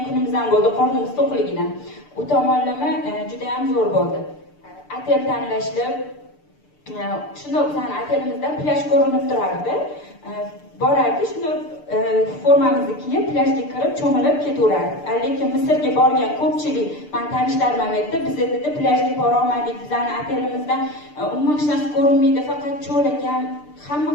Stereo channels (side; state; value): right; late; 6.7 ms